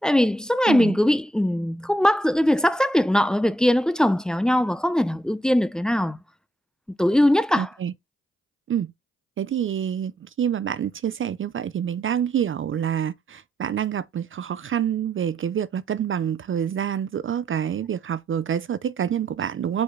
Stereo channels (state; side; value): normal; both; correlation 0.77